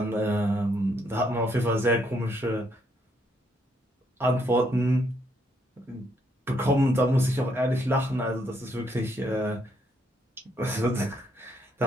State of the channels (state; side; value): normal; both; correlation 0.73